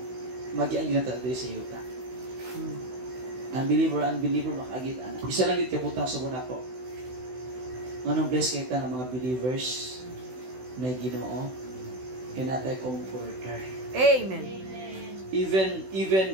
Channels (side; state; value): left; late; 16 ms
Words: mag-ian yun natin sa yuta. Unbeliever, makagit-ana. Isa lang yun kabutang sa muna ko. Anong bless kita ng mga believers na Ginoo? Kaya natin comforter. Amen.